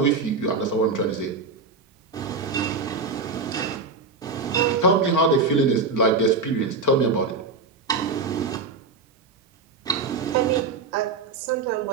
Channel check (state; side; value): quieter; left; 4.2 dB